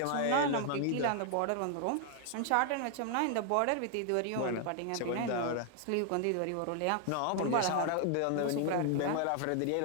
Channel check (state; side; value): different; both; correlation 0.00